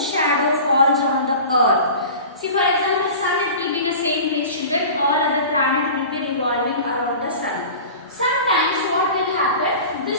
shadow falls on the earth. See, for example, sun it will be in the same place, children. All other planets will be revolving around the sun. Sometimes what will happen?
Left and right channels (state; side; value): inverted; both; correlation -0.37